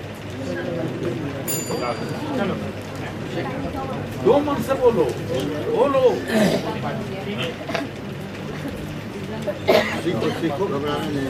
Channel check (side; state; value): both; identical; correlation 1.00